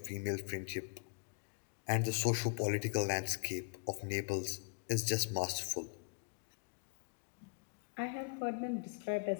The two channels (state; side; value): quieter; right; 38.8 dB